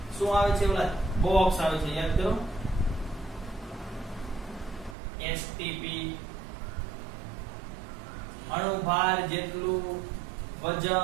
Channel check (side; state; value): left; drops out; at 5.0 s